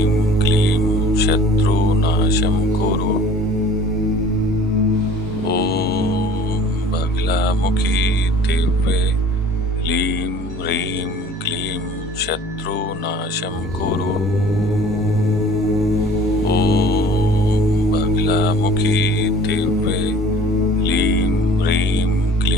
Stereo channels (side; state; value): both; normal; correlation 0.48